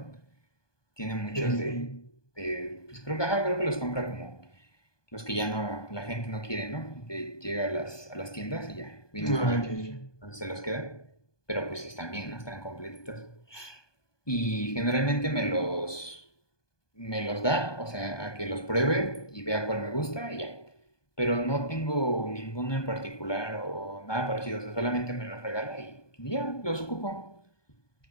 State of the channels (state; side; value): late; right; 1.2 ms